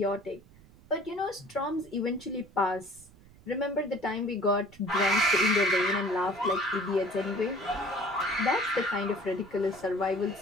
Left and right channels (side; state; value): right; noise; rumble, 24 dB below the sound